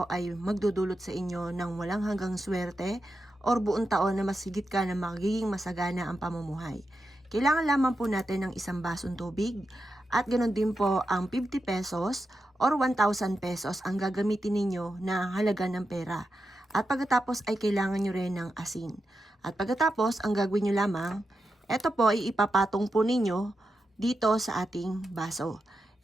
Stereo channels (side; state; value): both; normal; correlation 0.88